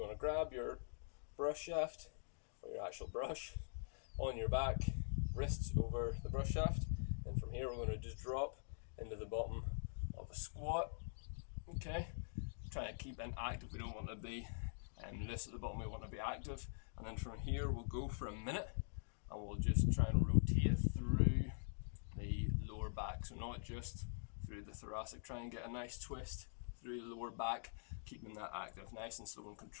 to grab your brush shaft or your actual brush on your back, wrists over the brush shaft, and from here we're going to just drop into the bottom of a squat. Okay, try to keep it active. We don't want to be loose at the bottom, we want to be active. And then from here we'll go for a minute and we'll just try and rotate through the lower back, so not just through the thoracic. Try and get a nice twist through the lower back, keeping that active, nice and slow and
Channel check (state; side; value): silent; right; digital silence